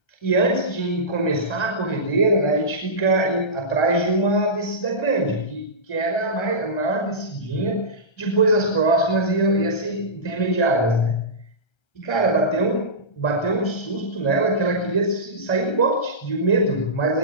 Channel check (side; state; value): right; late; 1.3 ms